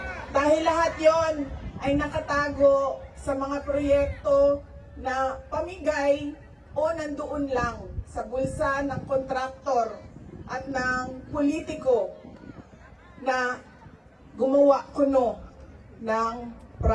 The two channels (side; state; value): both; identical; correlation 1.00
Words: Dahil lahat yon ay nakatago sa mga proyekto na pamigay o nandoon lang sa bulsa ng kontraktor at ng politiko na gumawa kuno ng